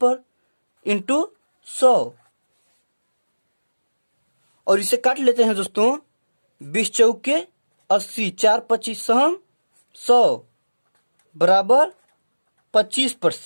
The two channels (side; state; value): both; inverted; correlation -1.00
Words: इंटू 100, और इसे काट लेते हैं दोस्तों। 20 चौके 80, 4 25 सहम 100, बराबर